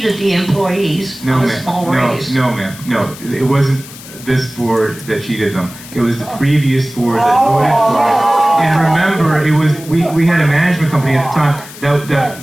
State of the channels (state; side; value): noise; left; hiss, 17 dB below the sound